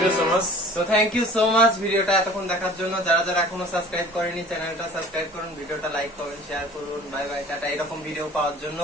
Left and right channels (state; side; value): normal; both; correlation 0.46